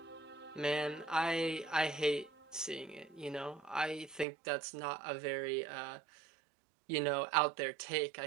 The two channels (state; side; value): drops out; left; at 4.2 s